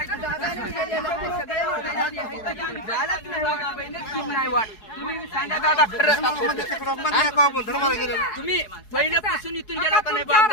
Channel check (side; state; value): right; late; 4.7 ms